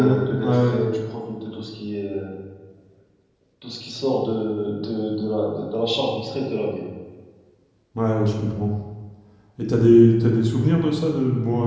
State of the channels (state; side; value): identical; both; correlation 1.00